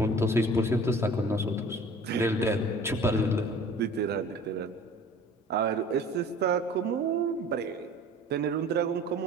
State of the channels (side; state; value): both; normal; correlation 0.45